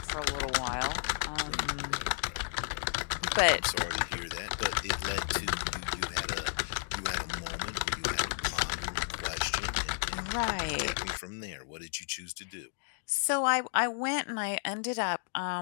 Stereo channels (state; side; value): silent; right; digital silence